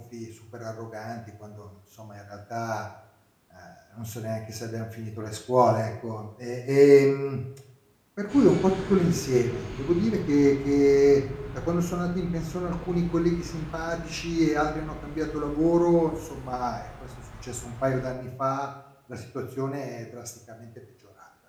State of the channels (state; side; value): identical; both; correlation 1.00